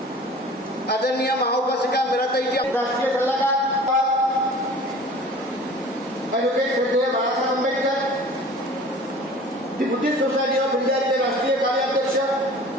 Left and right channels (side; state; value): both; normal; correlation 0.44